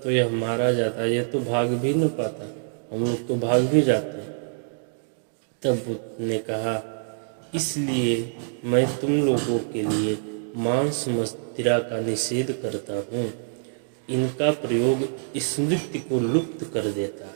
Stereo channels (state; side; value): silent; left; digital silence